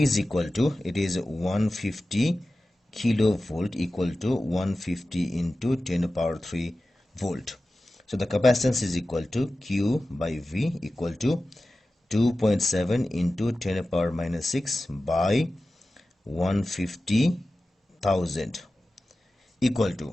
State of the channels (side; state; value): both; normal; correlation 0.95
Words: is equal to, it is 150 kilovolt equal to 150 into 10 to the power 3 volt. So the capacitance is equal to Q by V equal to 2.7 into 10 to the power minus 6 by 150,000 equal